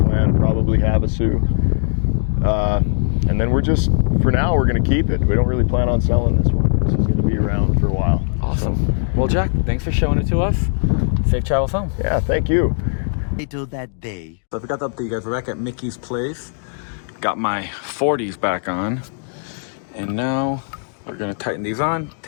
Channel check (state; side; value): silent; right; digital silence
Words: probably Havasu. And then we're just, for now, we're going to keep it. We don't really plan on selling this one. This is going to be around for a while. Awesome. So. Well, Jack, thanks for showing it to us. Safe travels home. Yeah, thank you. Till that day. So I forgot to update you guys. We're back at Mickey's place. Got my 40s back on. And now we're going to tighten these on,